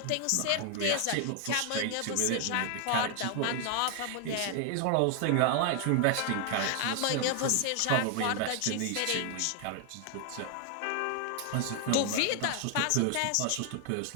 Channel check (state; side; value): different; both; correlation 0.00